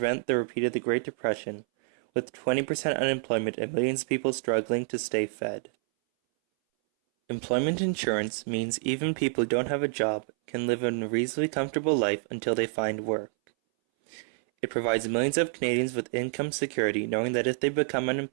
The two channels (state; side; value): silent; left; 59 dB below the other